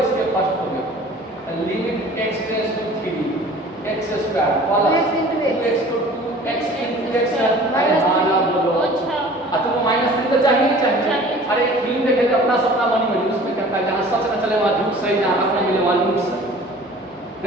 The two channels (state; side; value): normal; both; correlation 0.46